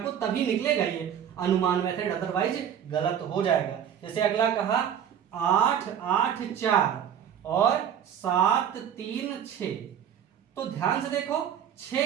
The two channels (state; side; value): quieter; left; 9.0 dB